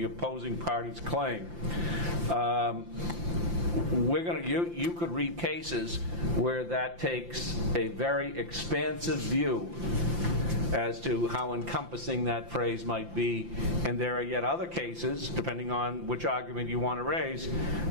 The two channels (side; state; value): left; late; 5.8 ms